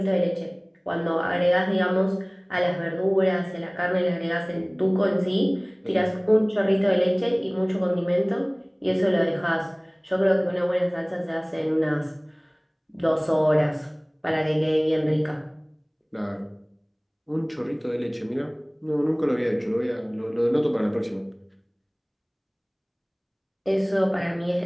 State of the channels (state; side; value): identical; both; correlation 1.00